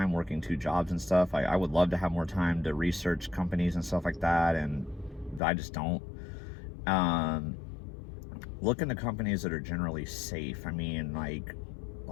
working 2 jobs and stuff. I would love to have more time to research companies and stuff like that, and I just don't. Look into companies that are generally safe. I mean, like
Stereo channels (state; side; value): drops out; right; at 5.4 s